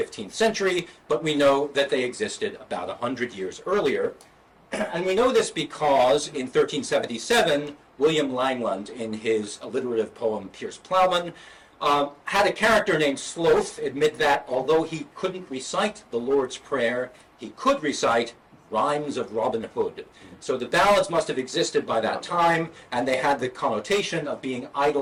century, but we know that they existed about 100 years earlier. And we know this because in 1377, William Langland, in his alliterative poem Piers Plowman, had a character named Sloth admit that although he couldn't recite the Lord's Prayer, he could recite rhymes of Robin Hood. So the ballads must have existed by that time, and they had the connotation of being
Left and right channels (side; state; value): both; identical; correlation 1.00